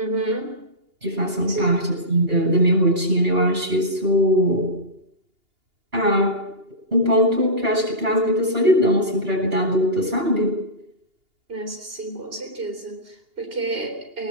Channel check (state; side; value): late; left; 2.8 ms